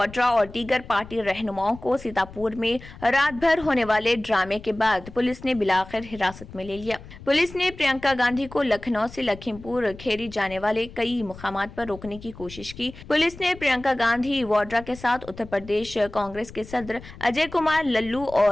और दीगर पार्टी रहनुमाओं को सीतापुर में रात भर होने वाले ड्रामे के बाद पुलिस ने बिलाखिर हिरासत में ले लिया। पुलिस ने प्रियंका गांधी को लखनऊ से लखीमपुर खेरी जाने वाले कई मुकामात पर रोकने की कोशिश की। पुलिस ने प्रियंका गांधी वाड्रा के साथ उत्तर प्रदेश कांग्रेस के सदर अजय कुमार लल्लू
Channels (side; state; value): left; noise; rumble, 17 dB below the sound